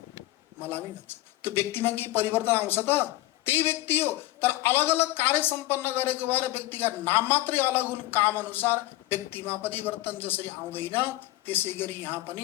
मलामी भन्छन्। त्यो व्यक्तिमा के परिवर्तन आउँछ त? त्यही व्यक्ति हो, तर अलग अलग कार्य सम्पन्न गरेको भएर व्यक्तिका नाम मात्रै अलग हुन्। काम अनुसार व्यक्तिमा परिवर्तन जसरी आउँदैन, त्यसै गरी यहाँ पनि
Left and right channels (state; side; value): quieter; right; 17.5 dB